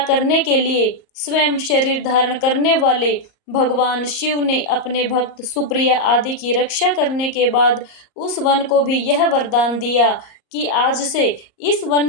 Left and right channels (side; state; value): right; late; 38 ms